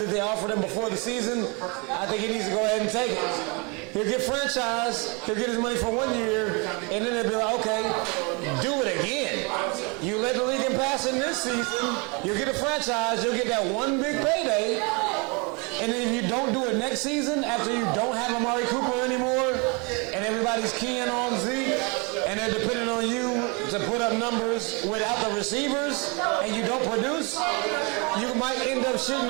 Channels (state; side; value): quieter; left; 30.8 dB